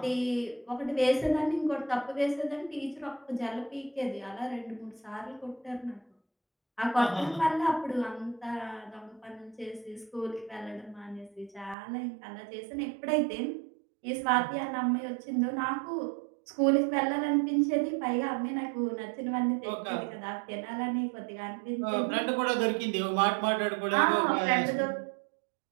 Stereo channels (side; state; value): left; drops out; at 11.8 s